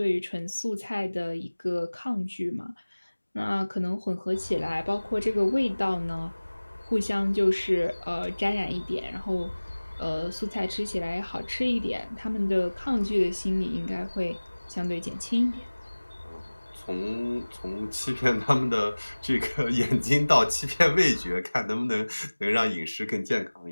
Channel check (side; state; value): both; inverted; correlation -1.00